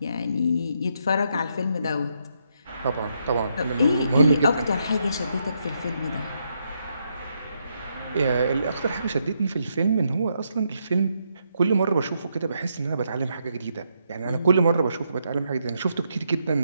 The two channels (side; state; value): both; inverted; correlation -0.78